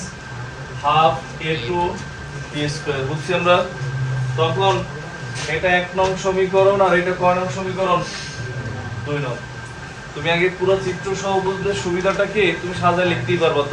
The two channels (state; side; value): identical; both; correlation 1.00